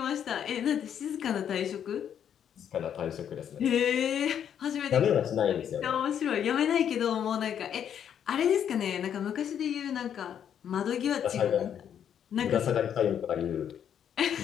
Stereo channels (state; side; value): quieter; right; 9.0 dB